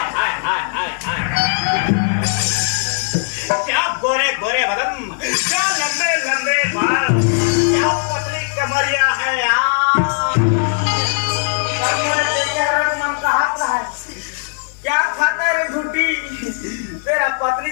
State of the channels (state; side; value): silent; right; 58 dB below the other